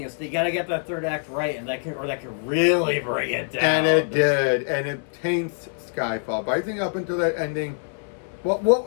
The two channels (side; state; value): right; silent; 62 dB below the other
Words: is you gotta get that third act right, and that can really bring it down. And it did, and it taints Skyfall. But I think up until that ending, well,